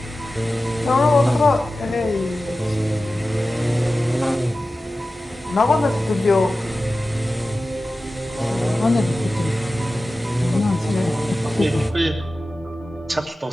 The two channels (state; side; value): normal; both; correlation 0.95